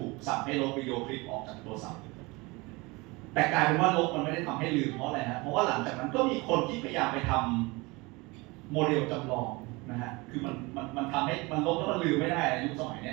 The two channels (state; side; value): quieter; left; 24.7 dB